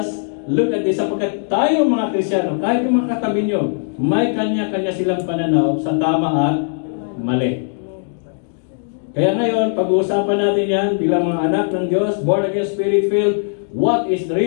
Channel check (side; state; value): right; silent; digital silence